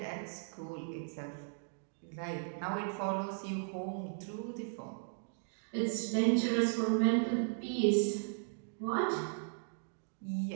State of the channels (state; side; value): silent; left; digital silence